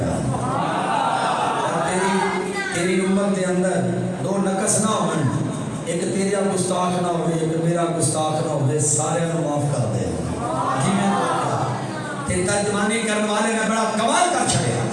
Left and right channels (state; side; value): identical; both; correlation 1.00